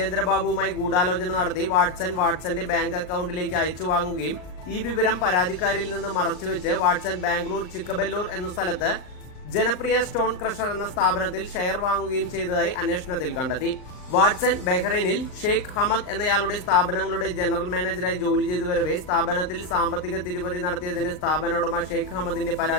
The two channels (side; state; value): right; late; 39 ms